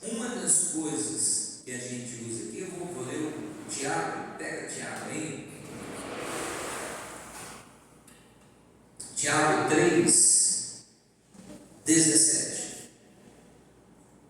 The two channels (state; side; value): identical; both; correlation 1.00